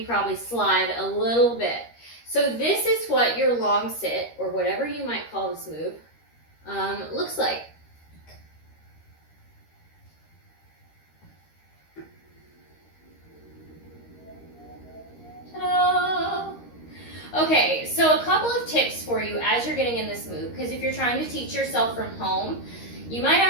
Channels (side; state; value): right; late; 13 ms